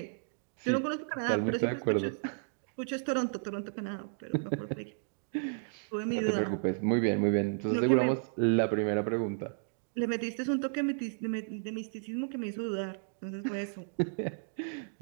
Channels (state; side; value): silent; left; digital silence